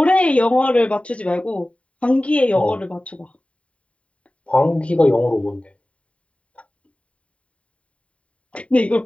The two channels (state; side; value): late; right; 0.064 ms